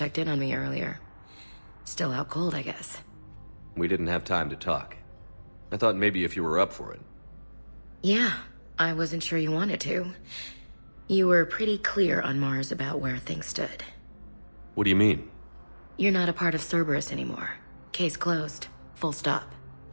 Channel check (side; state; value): both; inverted; correlation -1.00